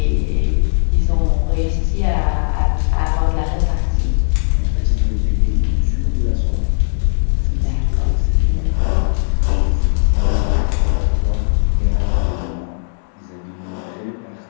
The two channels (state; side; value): silent; right; digital silence